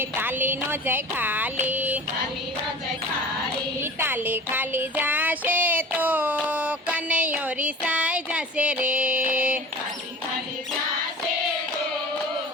તાલી નો જય ખાલી તાલી નો જય ખાલી. તાલી ખાલી જાશે તો કનૈયો રિસાઈ જશે રે. ખાલી ખાલી જાશે તો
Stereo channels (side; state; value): both; normal; correlation 0.38